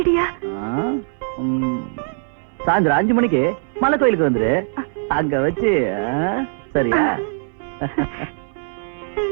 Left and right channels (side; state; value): left; silent; 65 dB below the other